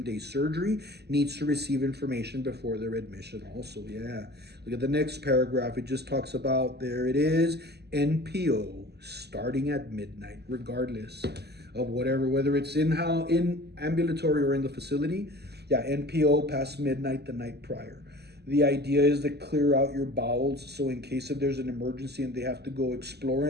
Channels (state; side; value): late; left; 0.48 ms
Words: surgery needs to receive information before their admission also. Yeah. Look at the next paragraph. It just talks about, there it is, NPO starting at midnight, regardless of whether it's in ambulatory or in the facility. Yeah, NPO past midnight the night prior. The idea is to clear out your bowels, so in case if there's an emergency and they have to go explore